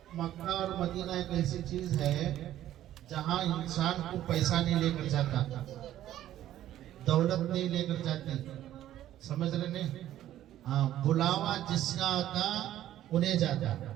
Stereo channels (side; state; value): left; quieter; 12.7 dB